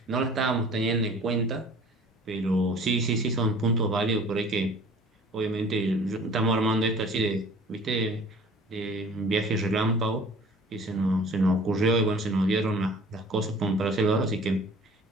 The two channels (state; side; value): normal; both; correlation 0.48